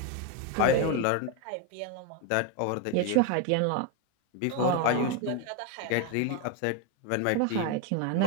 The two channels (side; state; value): both; different; correlation 0.02